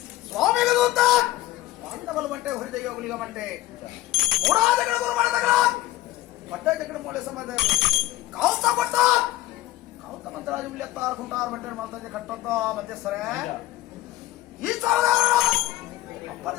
ಸ್ವಾಮಿಗ ದೂತ ಪಾಂಡವಲ ಬಂಟೆ ಹೊರಿದೆಯ ಗುಲಿಗ ಬಂಟೆ ಮೂಡಾದಗಳ ಗುರು ಮಾಡದಗಳ ಬಟ್ಟೆ ಜಗಡ ಮೂಲೆ ಸಂಬಂಧ ಕಾಲ್ತ ಬಟ್ಟ ಕಾಲ್ತ ಮಂತ್ರಾಜು ಉಳಿಯತ್ತಾರ ಕುಂಟಾರ ಬಂಟೆ ಮಾಡ್ತಾಜೆ ಕಟ್ಟಂತ ಮಧ್ಯಸ್ಥರೇ ಈ ಸಾಲದಾರ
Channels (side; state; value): right; quieter; 16.3 dB